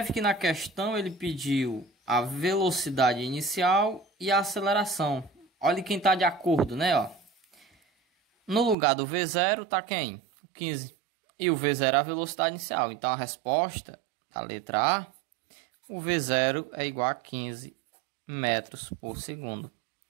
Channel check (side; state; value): left; drops out; at 8.8 s